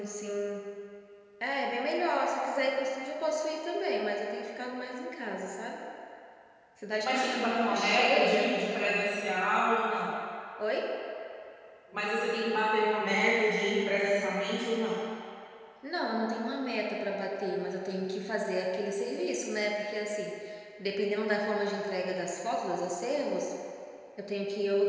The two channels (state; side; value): identical; both; correlation 1.00